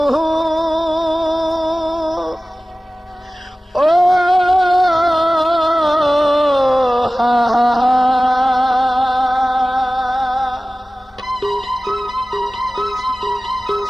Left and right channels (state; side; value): normal; both; correlation 0.97